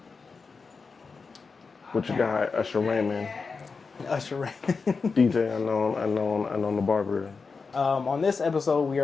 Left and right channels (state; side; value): quieter; right; 4.7 dB